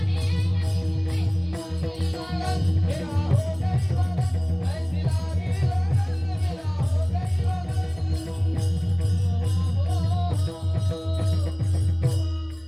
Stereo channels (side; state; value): right; noise; hum, 29 dB below the sound